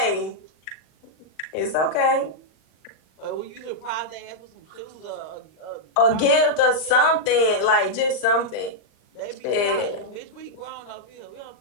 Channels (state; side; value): late; right; 39 ms